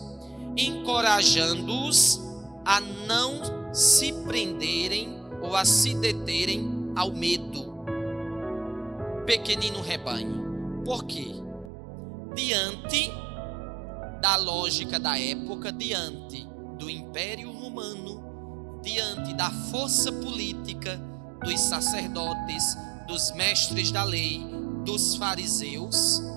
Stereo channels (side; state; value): left; drops out; at 11.7 s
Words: encorajando-os a não se prenderem ou a se deterem ao medo. Pequenino rebanho. Por quê? Diante da lógica da época, diante do Império Romano, diante da força política dos sacerdotes, dos mestres da lei, dos fariseus,